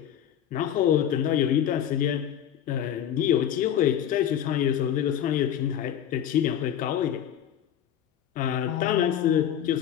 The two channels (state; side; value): quieter; right; 10.0 dB